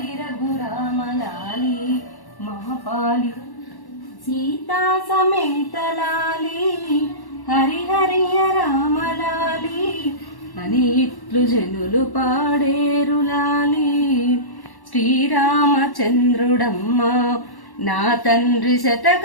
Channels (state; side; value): late; right; 1.1 ms